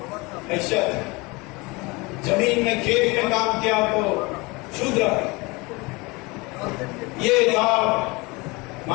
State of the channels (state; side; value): quieter; right; 25.2 dB